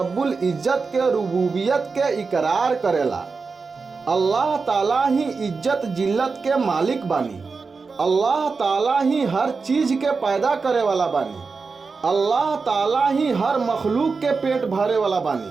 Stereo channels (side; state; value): left; quieter; 4.6 dB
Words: इज्जत के रुबूबियत के इकरार करेला। अल्लाह ताला ही इज्जत जिल्लत के मालिक बानी। अल्लाह ताला ही हर चीज़ के पैदा करे वाला बानी। अल्लाह ताला ही हर मखलूक के पेट भरे वाला